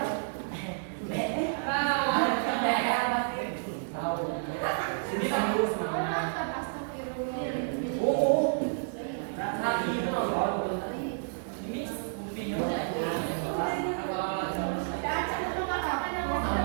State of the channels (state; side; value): silent; left; digital silence